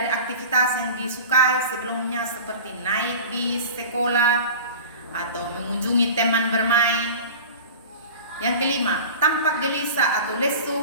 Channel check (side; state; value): both; inverted; correlation -0.36